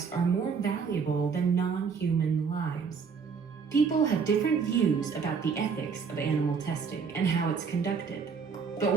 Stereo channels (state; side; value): quieter; left; 5.8 dB